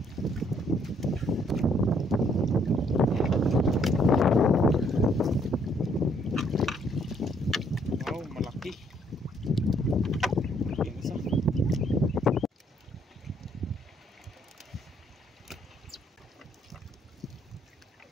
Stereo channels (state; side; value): normal; both; correlation 0.67